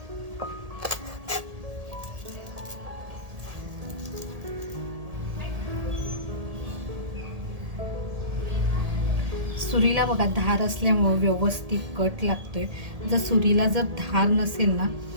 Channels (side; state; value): left; late; 1.7 ms